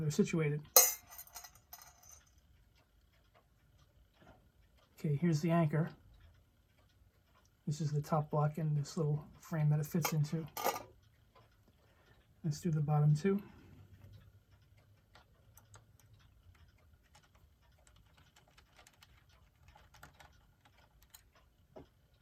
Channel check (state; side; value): identical; both; correlation 1.00